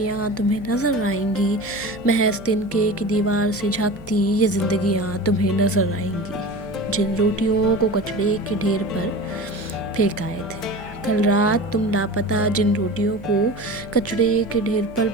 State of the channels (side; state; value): right; noise; hum, 20 dB below the sound